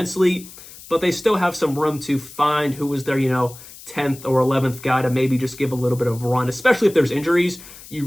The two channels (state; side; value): noise; left; hiss, 18 dB below the sound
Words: but they still have some room to find who was their, 10th or 11th guy to maybe just give a little bit of run, especially if there's injuries. You